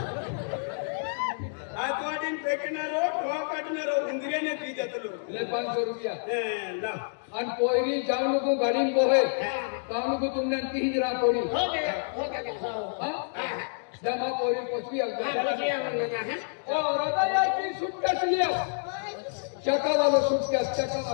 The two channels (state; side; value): silent; right; digital silence